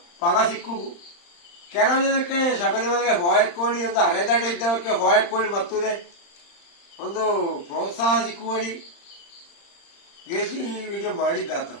ಫಲ ಸಿಕ್ಕು. ಕೆಲವು ದಿನಕ್ಕೆ ಶಬರಿಮಲೆಗೆ ಹೋಯಕ್ಕೋಳಿ ಒಂದು ಅರೆದಡ್ಡ ಇದ್ದವಕ್ಕೆ ಹೋಯಕ್ಕೋಳಿ ಮತ್ತುದೇ ಒಂದು ಪ್ರೋತ್ಸಾಹ ಸಿಕ್ಕುವಳಿ ಗೆಸಿ ವಿಡಿಯೋ ಮಾಡಿದ್ದಾತ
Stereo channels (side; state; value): right; late; 35 ms